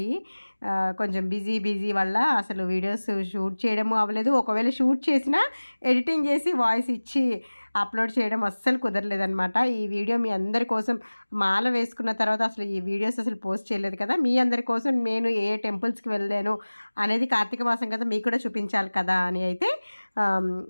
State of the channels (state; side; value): inverted; both; correlation -1.00